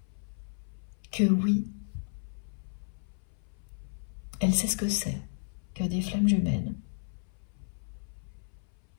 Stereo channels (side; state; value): right; silent; 56 dB below the other